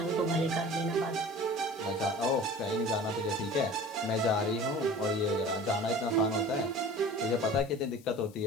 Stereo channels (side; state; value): left; noise; hiss, 25 dB below the sound